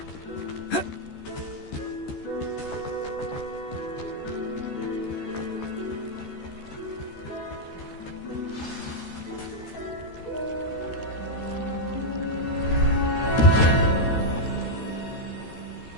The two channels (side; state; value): right; late; 13 ms